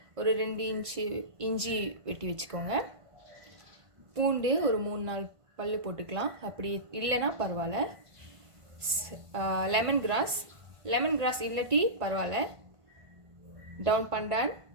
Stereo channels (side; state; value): left; late; 1.5 ms